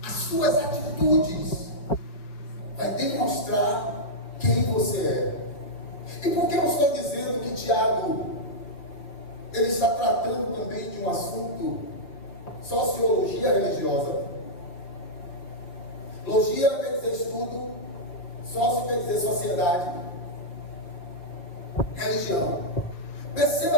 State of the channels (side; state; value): right; late; 5.4 ms